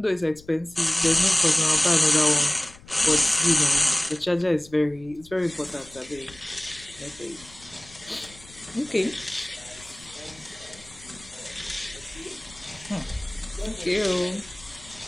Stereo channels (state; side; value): noise; left; rumble, 22 dB below the sound